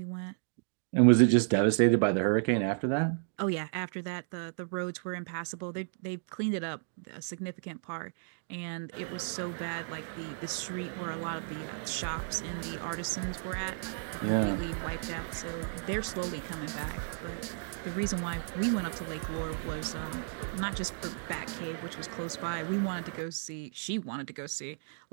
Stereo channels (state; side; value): silent; left; digital silence